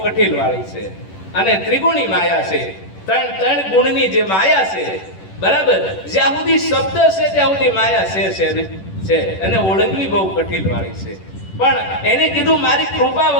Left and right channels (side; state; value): right; late; 10 ms